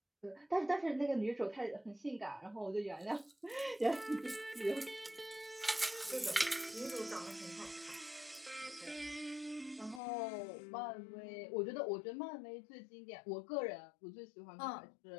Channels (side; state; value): right; drops out; at 10.0 s